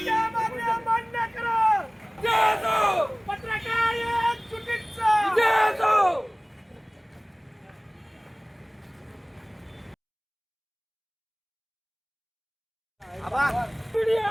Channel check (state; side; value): identical; both; correlation 1.00